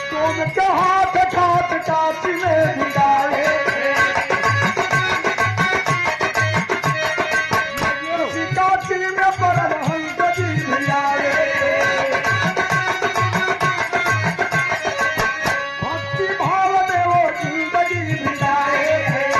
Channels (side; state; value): both; identical; correlation 1.00